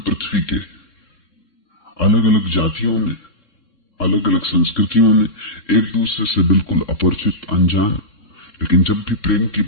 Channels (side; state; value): right; late; 3.7 ms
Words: पृथ्वी के, अलग अलग जातियों में, अलग अलग संस्कृतियों में एक दूसरे से बिल्कुल अपरिचित, अनजान, लेकिन जब भी प्रेम की